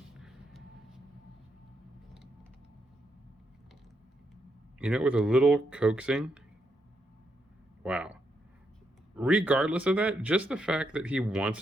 With a little coaxing. Wow. Regardless of that, just the fact that he wants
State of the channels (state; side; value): normal; both; correlation 0.80